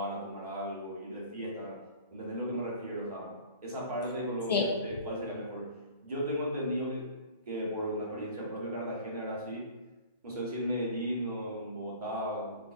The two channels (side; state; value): both; inverted; correlation -0.43